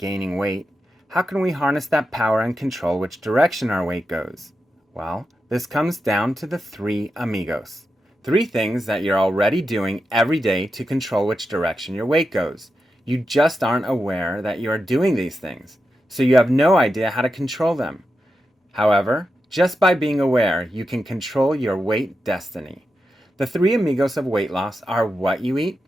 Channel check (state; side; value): normal; both; correlation 0.88